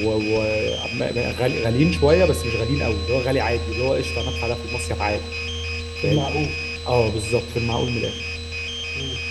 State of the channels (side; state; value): both; identical; correlation 1.00